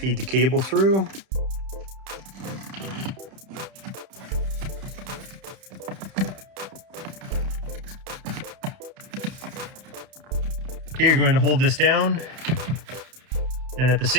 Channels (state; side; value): late; left; 31 ms